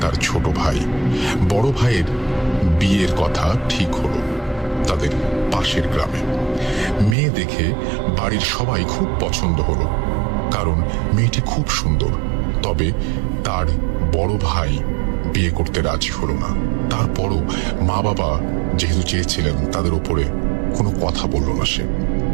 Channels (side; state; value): left; drops out; at 7.2 s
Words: তার ছোট ভাই। বড় ভাইয়ের বিয়ের কথা ঠিক হলো তাদের পাশের গ্রামে। মেয়ে দেখে বাড়ির সবাই খুব পছন্দ হলো, কারণ মেয়েটি খুব সুন্দর। তবে তার বড় ভাই বিয়ে করতে রাজি হলো না। তারপরও মা বাবা যেহেতু চেয়েছিলেন, তাদের উপরে কোনো কথা বলল না সে।